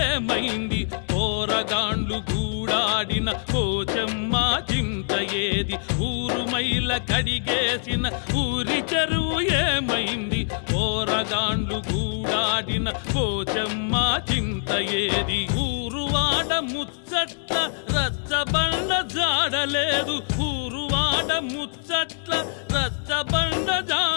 ఏమైంది, పోరగాండ్లు గూడాడిన పోచమ్మ చింత ఏది. ఊరు మైల కడిగేసిన ఊరి చెరువు ఏమైంది, పోరగాండ్లు గూడాడిన పోచమ్మ చింత ఏది. ఊరువాడ ముచ్చట్ల రచ్చబండ జాడలేదు, ఊరువాడ ముచ్చట్ల రచ్చబండ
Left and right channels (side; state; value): right; silent; digital silence